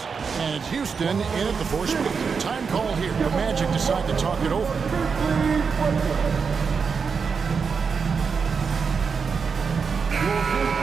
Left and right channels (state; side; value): quieter; left; 5.6 dB